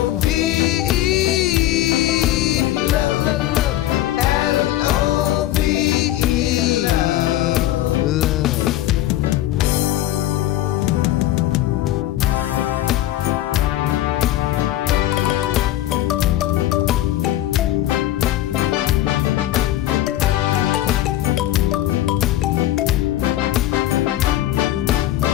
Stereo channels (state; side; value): quieter; right; 14.3 dB